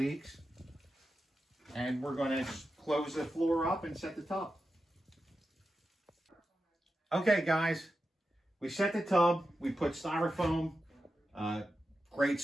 And we're going to close the floor up and set the tub. Okay, guys. We set the tub. We put styrofoam, great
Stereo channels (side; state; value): both; normal; correlation 0.91